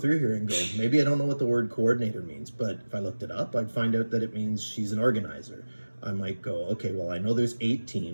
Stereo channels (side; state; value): both; inverted; correlation -1.00